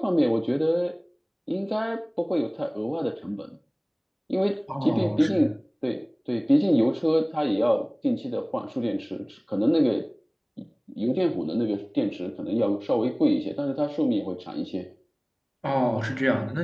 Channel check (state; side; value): identical; both; correlation 1.00